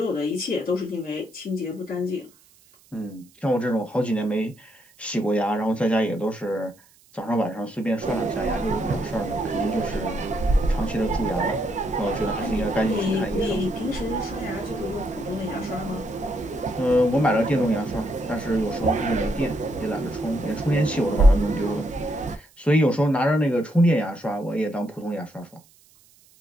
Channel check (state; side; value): noise; right; hiss, 29 dB below the sound